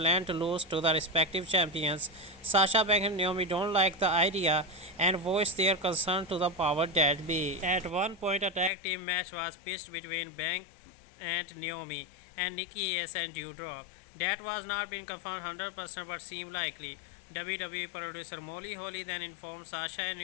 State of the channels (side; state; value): right; drops out; at 8.7 s